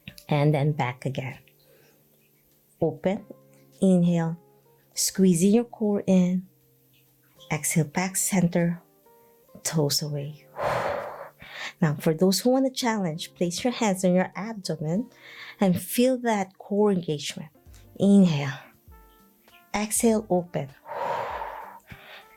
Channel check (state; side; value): identical; both; correlation 1.00